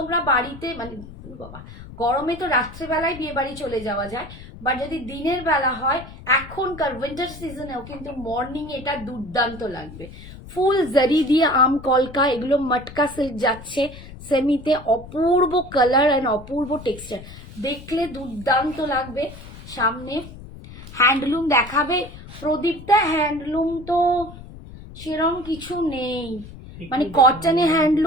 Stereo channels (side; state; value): left; noise; rumble, 16 dB below the sound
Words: বাড়িতে মানে বাবা, গরমে তো রাত্রেবেলায় বিয়ে বাড়ি চলে যাওয়া যায়, বা যদি দিনের বেলা হয় এখনকার উইন্টার সিজনেও কিন্তু মর্নিং এটা দুর্দান্ত লাগবে। ফুল জারি দিয়ে আম কলকা, এগুলো মটকা সিল্ক যাচ্ছে সেমিতে, অপূর্ব কালার অ্যান্ড অপূর্ব টেক্সচার, দেখলে দুর্দান্ত লাগবে। সামনে হ্যান্ডলুম দেখাবে প্রদীপটা, হ্যান্ডলুম তো সেরকম কিছু নেই, মানে কটনে